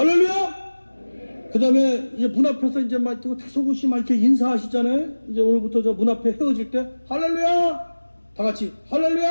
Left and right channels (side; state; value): both; inverted; correlation -1.00